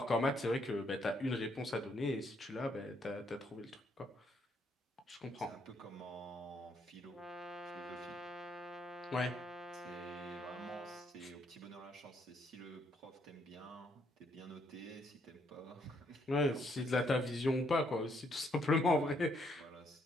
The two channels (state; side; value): normal; both; correlation 0.72